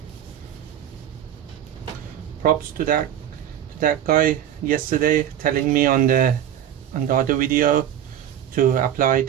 props to that guy yesterday telling me on the other video to apply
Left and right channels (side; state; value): left; quieter; 10.6 dB